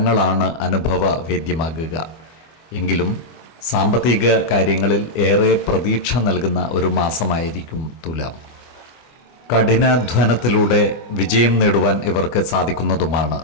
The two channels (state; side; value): late; right; 24 ms